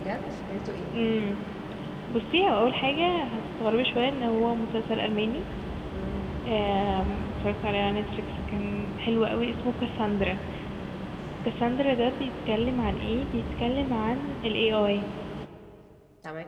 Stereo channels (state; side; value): identical; both; correlation 1.00